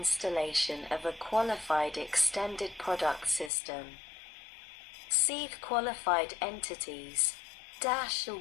of a qualified extended product system. See qualified entities. 1.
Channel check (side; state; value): right; drops out; at 3.5 s